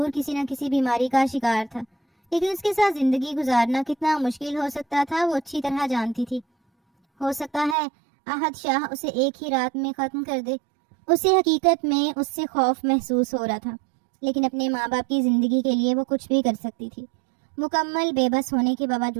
کسی نہ کسی بیماری کا شکار تھا، لیکن اس کے ساتھ زندگی گزارنا کتنا مشکل ہو سکتا تھا وہ اچھی طرح جانتی تھی۔ ہو سکتا ہے احد شاہ اسے ایک ہی رات میں ختم کر دے۔ اسے حقیقت میں اس سے خوف محسوس ہو رہا تھا، لیکن اپنے ماں باپ کی زندگی کے لیے وہ کچھ بھی کر سکتی تھی۔ مکمل بے بس ہونے کے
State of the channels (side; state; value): left; drops out; at 7.8 s